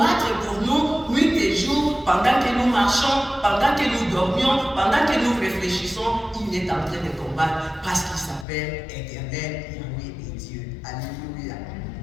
pour nous nuit et jour, pendant que nous marchons, pendant que nous dormions, pendant que nous réfléchissons, il est en train de combattre parce qu'il s'appelle éternel Yahweh et Dieu. Alléluia.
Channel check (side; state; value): right; drops out; at 8.5 s